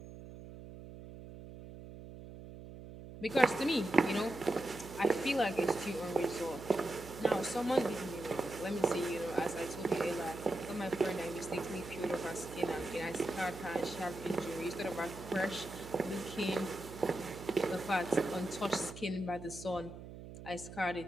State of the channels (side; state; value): right; noise; hum, 13 dB below the sound